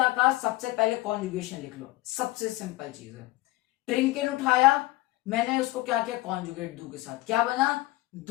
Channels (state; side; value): quieter; right; 19.2 dB